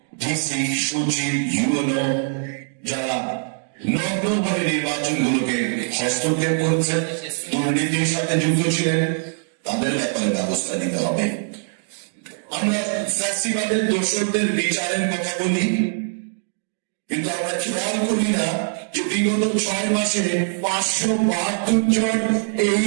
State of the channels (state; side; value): silent; left; 64 dB below the other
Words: ডিসি, সচিব, ইউএনও যারা নগ্নভাবে নির্বাচনগুলোকে হস্তক্ষেপ করেছে, দুর্নীতির সাথে যুক্ত ছিলেন, তাদের ব্যাপারে ব্যবস্থা নিতে হবে। আমরা ফ্যাসিবাদের দোষরদের বিচারের কথা বলি, কিন্তু আমরা খেয়াল করি না যে বিগত 6 মাসে 572 জন এই